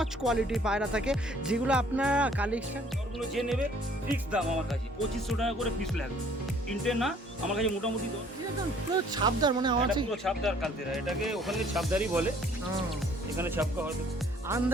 কোয়ালিটির পায়রা থাকে, যেগুলো আপনারা কালেকশন ওগুলো যে নেবে ফিক্স দাম আমার কাছে 2500 টাকা করে পিস লাগবে। তিনটে না, আমার কাছে মোটামুটি পুরো ছাপদার, মানে আমার কাছে পুরো ছাপদার কালতেরা, এটাকে ওখানে ছাপদারই বলে, এখানে ছাপকা হয়তো।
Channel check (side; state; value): both; normal; correlation 0.58